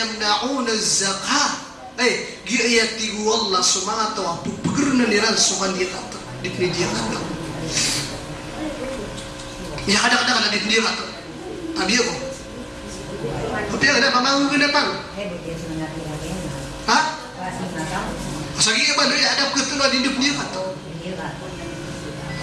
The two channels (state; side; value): identical; both; correlation 1.00